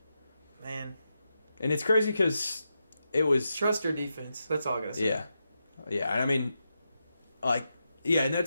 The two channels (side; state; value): both; inverted; correlation -0.87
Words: man. And it's crazy because it was trust your defense. That's all I gotta say. Yeah. And I mean, like, in that